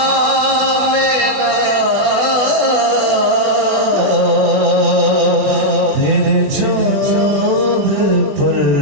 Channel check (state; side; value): late; left; 20 ms